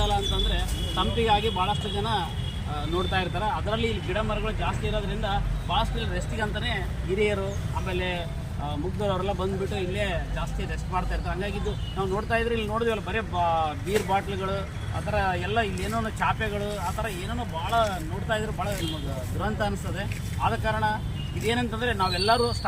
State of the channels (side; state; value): both; identical; correlation 1.00